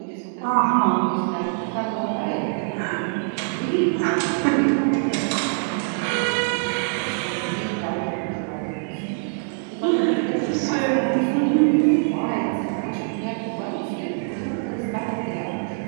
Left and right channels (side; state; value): left; silent; 63 dB below the other